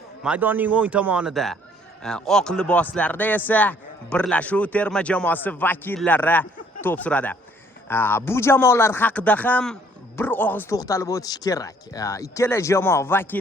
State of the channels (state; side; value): normal; both; correlation 0.61